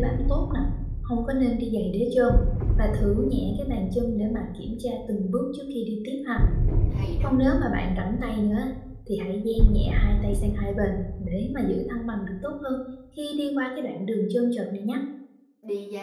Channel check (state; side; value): identical; both; correlation 1.00